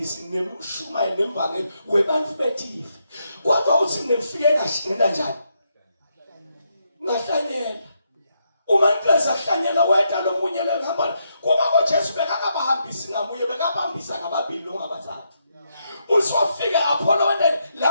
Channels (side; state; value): both; inverted; correlation -0.80